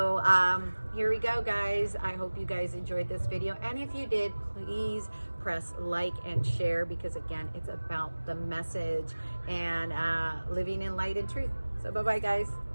here we go, guys. I hope you guys enjoyed this video, and if you did, please press like and share, because again, it's about the message and living in light and truth. So bye bye, guys.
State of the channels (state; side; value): inverted; both; correlation -1.00